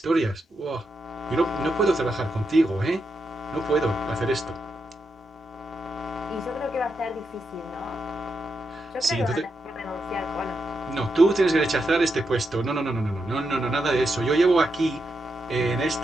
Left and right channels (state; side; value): normal; both; correlation 0.84